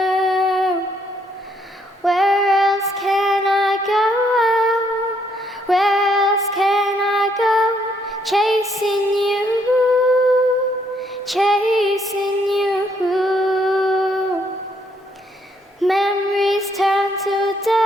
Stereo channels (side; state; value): both; normal; correlation 0.71